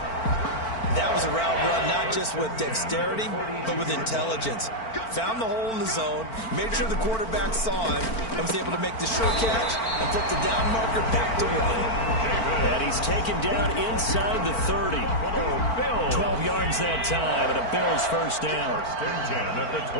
That was a route run not just with dexterity, but with intelligence. Found the hole in the zone, made sure the quarterback saw him, and was able to make the short catch and flip the down marker back to run. And he's taken down inside the 30. 12 yards that time, and a Bills first down. 1st and 10 at the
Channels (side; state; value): right; late; 4.5 ms